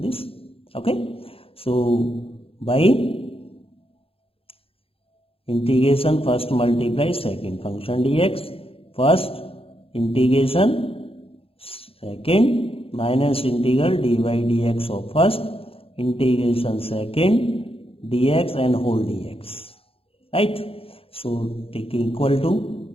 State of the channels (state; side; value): late; right; 0.27 ms